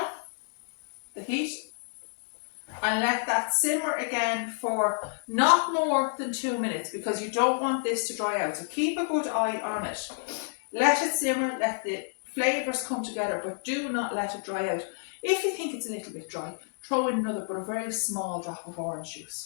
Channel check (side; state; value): right; silent; 58 dB below the other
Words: the heat and let that simmer again for not more than 2 minutes, because you don't want this to dry out. So keep a good eye on it. Let it simmer, let the flavours come together, but do not let it dry out. If you think it's a little bit dry, throw in another but a very small drop of orange